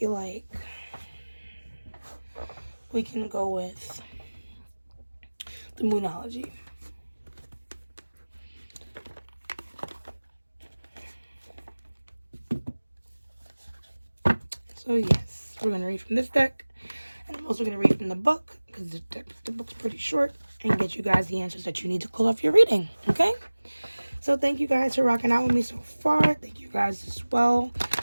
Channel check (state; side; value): inverted; both; correlation -1.00